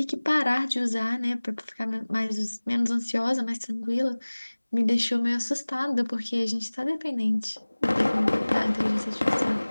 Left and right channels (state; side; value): inverted; both; correlation -1.00